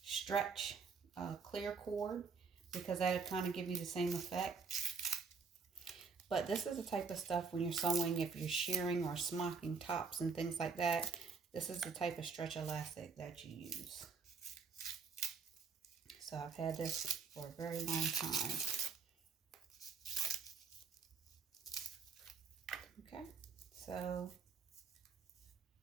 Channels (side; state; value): left; quieter; 5.3 dB